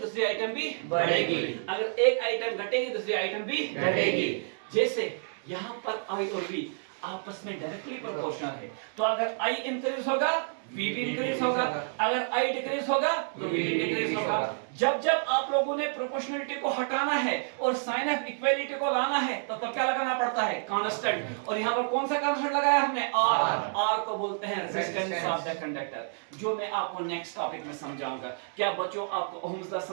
आइटम भी बढ़ेगी, अगर एक आइटम घटेगी दूसरी आइटम भी घटेगी। जैसे यहां पर I और V आपस में डायरेक्टली प्रोपोर्शनल है, तो अगर I इंक्रीज होगा V भी इंक्रीज होगा, अगर I डिक्रीज होगा तो V भी डिक्रीज होगा। जब जब आप लोगों ने प्रोपोर्शनलिटी को हटाना है और साइन ऑफ इक्वालिटी को लाना है तो तब क्या लगाना पड़ता है? कांस्टेंट। और यहाँ पर कौन सा कांस्टेंट लगाया हमने? R को बोलते हैं रेजिस्टेंस ऑफ द कंडक्टर, जो मैं आपको नेक्स्ट टॉपिक में समझाऊंगा। क्या बच्चों आपको ओहम्स लॉ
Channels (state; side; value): silent; left; 58 dB below the other